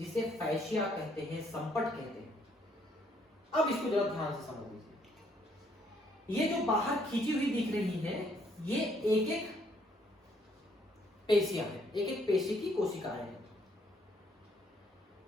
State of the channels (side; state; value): both; normal; correlation 0.68